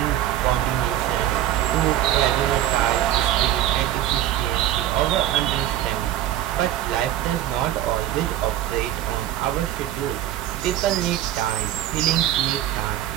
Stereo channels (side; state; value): left; quieter; 12.6 dB